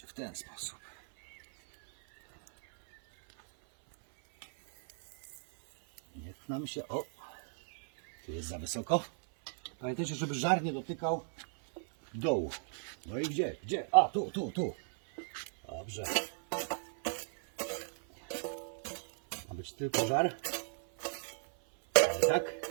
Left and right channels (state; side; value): silent; left; 54 dB below the other